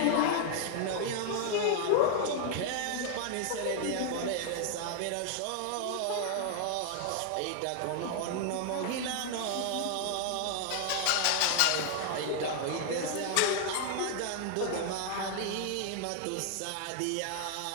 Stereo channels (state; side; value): different; both; correlation 0.00